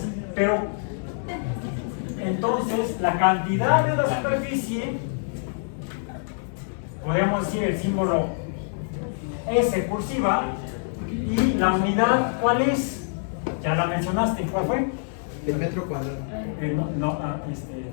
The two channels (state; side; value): silent; right; digital silence